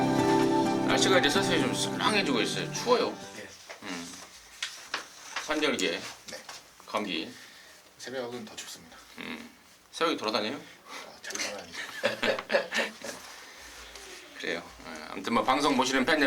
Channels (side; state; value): both; identical; correlation 1.00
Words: 날씨가 이제 서서히 좀 썰렁해지고 있어요. 추워요. 환절기에 네. 감기. 새벽은 더 춥습니다. 새벽에 돌아다녀요? 잘 돌아다니죠. 그래요. 아무튼 뭐 방송 보시는 팬